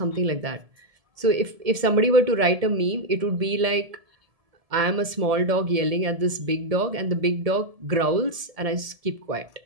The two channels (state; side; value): late; left; 1.7 ms